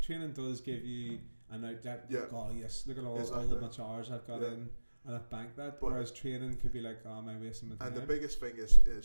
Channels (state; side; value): inverted; both; correlation -1.00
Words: training does give you an outlet. Oh yes, look at all the much hours I've got in, and I've banked that. But whereas training could be like, oh, am I wasting my time? And the biggest thing